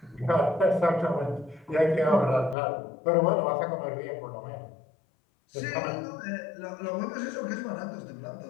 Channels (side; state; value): right; drops out; at 2.6 s